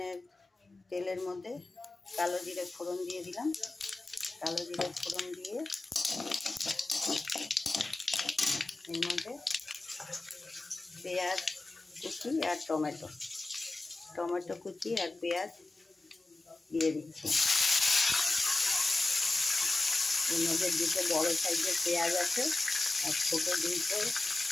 তেলের মধ্যে কালো জিরে ফোড়ন দিয়ে দিলাম। কালো জিরে ফোড়ন দিয়ে এর মধ্যে পেঁয়াজ কুচি আর টমেটো কুচি আর পেঁয়াজ দিয়ে দিচ্ছি। এর মধ্যে দুটো বড় সাইজের পেঁয়াজ আছে আর ছোটো দুটো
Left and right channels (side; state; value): right; quieter; 3.0 dB